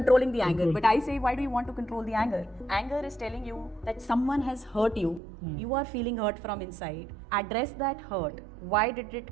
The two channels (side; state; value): left; drops out; at 5.2 s